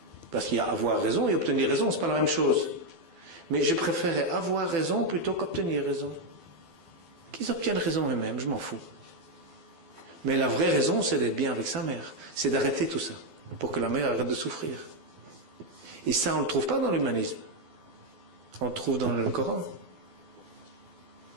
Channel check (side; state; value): left; late; 12 ms